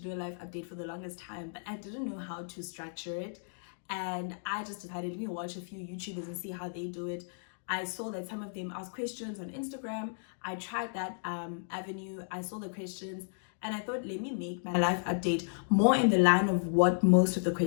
a life update for the longest time, but I didn't know how to structure it, and I just decided, let me watch a few YouTubers and see how they do it. I saw that some of them ask questions on Instagram. I tried that avenue. I saw the questions and I thought, let me make my life update more in the line of what most of the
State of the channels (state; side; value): silent; right; digital silence